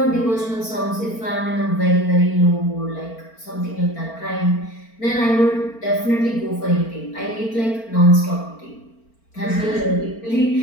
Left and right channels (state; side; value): late; right; 4.4 ms